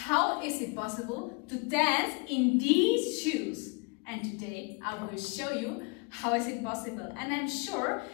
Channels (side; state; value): right; quieter; 30.1 dB